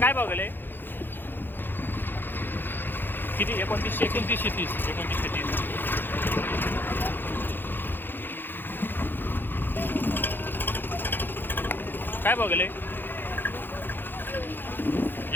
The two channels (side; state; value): right; late; 0.097 ms